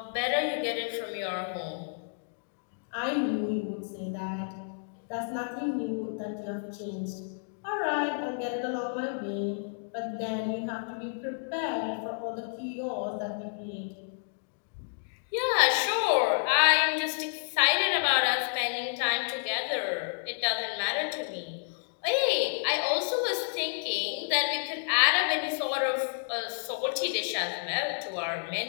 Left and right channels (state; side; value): silent; right; digital silence